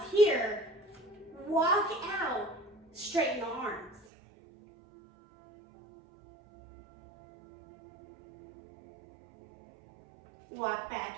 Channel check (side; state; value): left; drops out; at 4.0 s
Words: here, walk out, straighten the arms. Walk